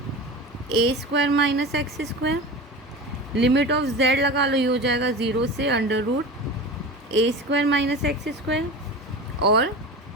A square minus x square. Limit of z लगा लो, ये हो जाएगा 0 से अंडर रूट ए स्क्वायर माइनस एक्स स्क्वायर, और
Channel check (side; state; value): both; normal; correlation 0.30